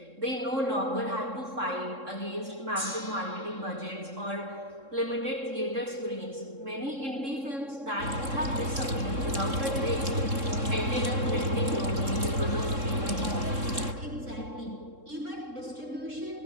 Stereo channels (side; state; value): left; late; 3.7 ms